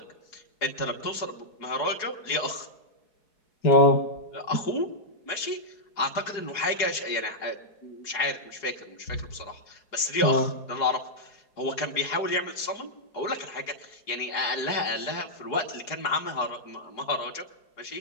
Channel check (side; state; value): right; late; 4.9 ms